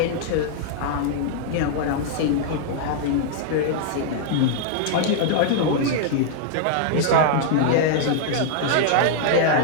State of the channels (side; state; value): both; different; correlation -0.01